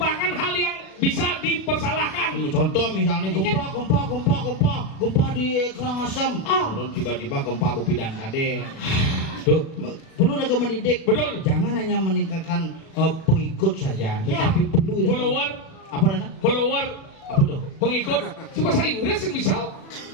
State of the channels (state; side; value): late; right; 37 ms